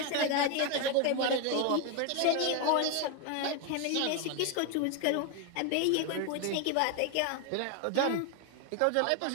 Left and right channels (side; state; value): both; different; correlation 0.01